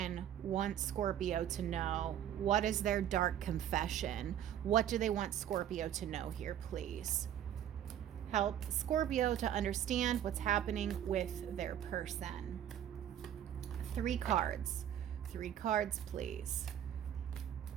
want Scorpio to know? What is their dark confession? What do they want Scorpio to know here, please? Help Scorpio to understand what's happening with their person. 3 cards. 3 cards, please.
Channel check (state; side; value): quieter; left; 10.4 dB